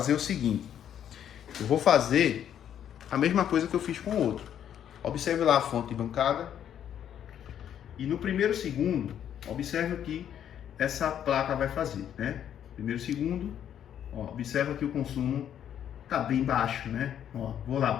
o seguinte, eu vou fazer a mesma coisa que eu fiz com o outro. Observe lá a fonte de bancada e no primeiro segundo, observe o que essa placa vai fazer, né? Primeiro segundo, ó, observa que o consumo tá bem baixo, né? Ó, vou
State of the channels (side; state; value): right; quieter; 9.7 dB